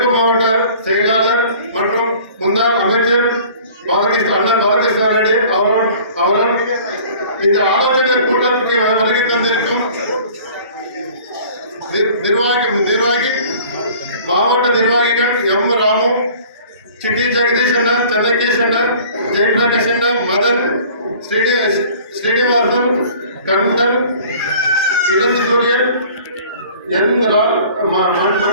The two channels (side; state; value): both; inverted; correlation -0.49